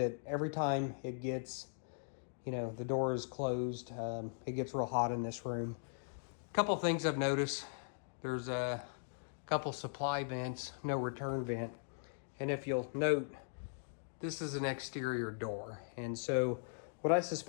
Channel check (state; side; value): silent; right; digital silence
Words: every time it gets, the door is closed, it gets real hot in this room. A couple things I've noticed: there's a couple supply vents, no return vent, and if you'll note, this is an exterior door, and so what I